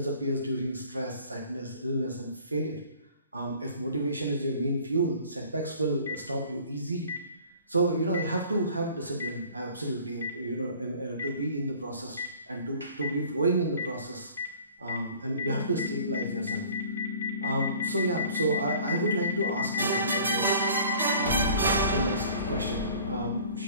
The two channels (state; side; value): inverted; both; correlation -0.50